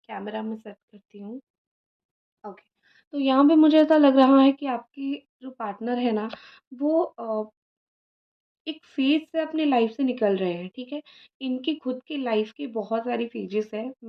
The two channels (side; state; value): both; identical; correlation 1.00